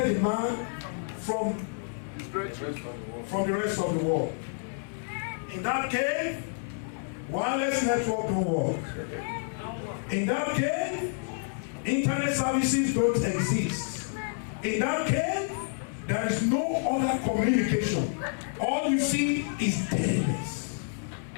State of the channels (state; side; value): silent; right; digital silence